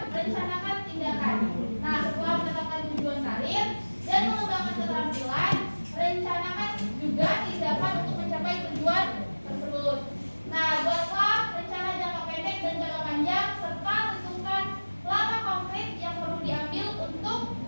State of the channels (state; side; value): inverted; both; correlation -1.00